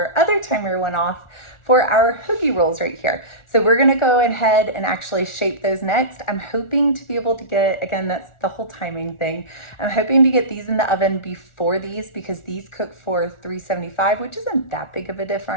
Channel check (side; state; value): right; late; 1.4 ms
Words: other timer went off for our hoagie rolls right here. So we're gonna go ahead and actually shape those next. I'm hoping to be able to get, again, that's the whole timing thing. I'm hoping to get these in the oven before these because these cook for 375, which isn't that big of a